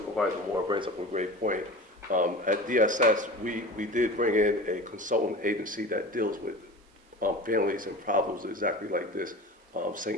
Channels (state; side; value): normal; both; correlation 0.34